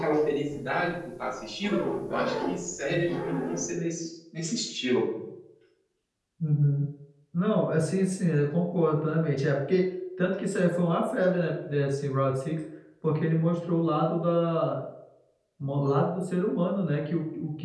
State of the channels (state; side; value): identical; both; correlation 1.00